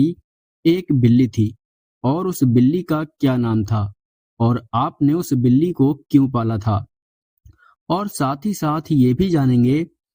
ایک بلی تھی اور اس بلی کا کیا نام تھا اور آپ نے اس بلی کو کیوں پالا تھا۔ اور ساتھ ہی ساتھ یہ بھی جانیں گے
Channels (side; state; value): both; identical; correlation 1.00